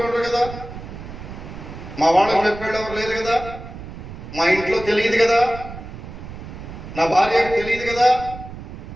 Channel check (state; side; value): noise; right; rumble, 12 dB below the sound